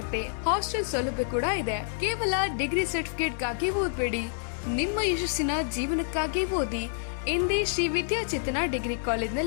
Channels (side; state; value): right; silent; digital silence